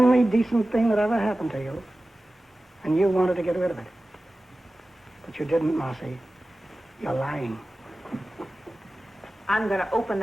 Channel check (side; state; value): both; normal; correlation 0.96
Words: decent thing that ever happened to you, and you wanted to get rid of it. But you didn't, Marcy. You're lying. I'm going to open